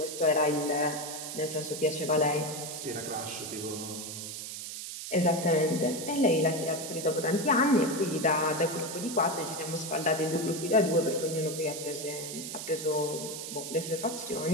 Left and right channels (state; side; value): noise; right; hiss, 7 dB below the sound